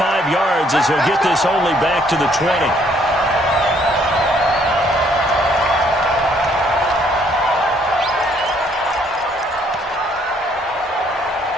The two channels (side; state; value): both; normal; correlation 0.65